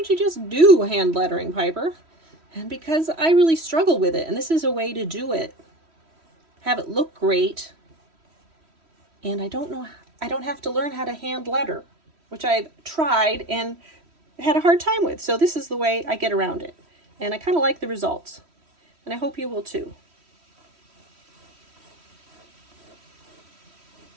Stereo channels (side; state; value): left; late; 3.1 ms